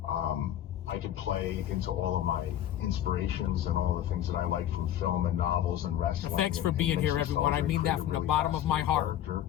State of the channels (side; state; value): right; quieter; 11.7 dB